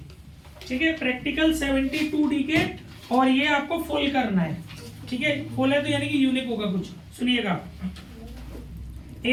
ठीक है, प्रैक्टिकल 72 डीके, और ये आपको फुल करना है। ठीक है, फुल है तो यानी कि यूनिक होगा कुछ। सुनिएगा,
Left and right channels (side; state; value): both; identical; correlation 1.00